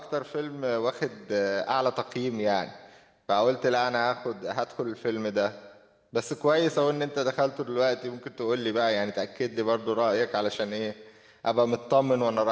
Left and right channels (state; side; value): identical; both; correlation 1.00